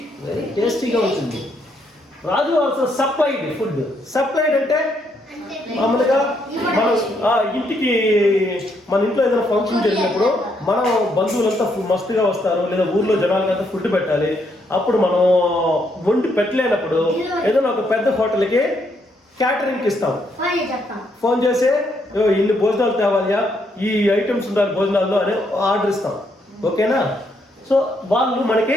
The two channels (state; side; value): normal; both; correlation 0.74